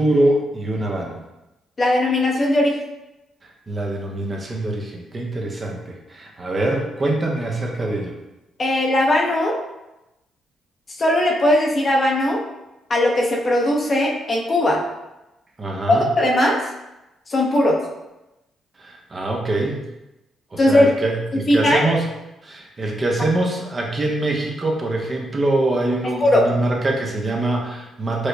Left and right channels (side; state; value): both; normal; correlation 0.81